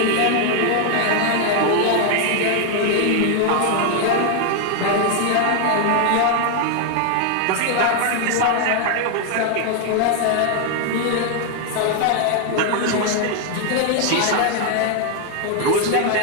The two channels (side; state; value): both; different; correlation 0.00